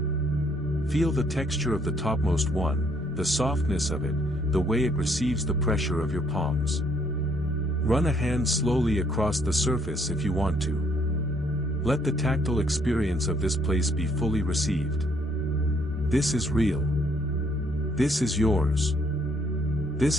Feel the texture of the topmost one, the softness of it, the way it receives the pressure of your palms. Run a hand slowly across the surface if you want to. Let the tactile experience of this place be fully received. This is real. This is yours.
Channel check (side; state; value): both; normal; correlation 0.67